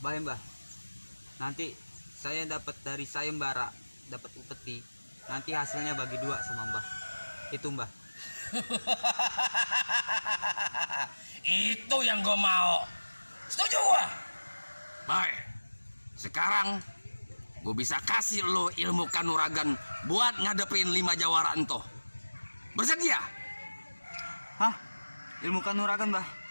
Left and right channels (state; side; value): inverted; both; correlation -1.00